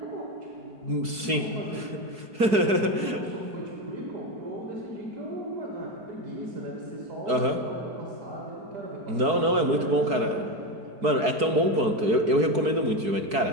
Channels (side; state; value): left; late; 4.6 ms